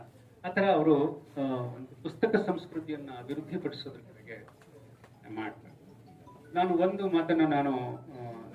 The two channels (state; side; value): identical; both; correlation 1.00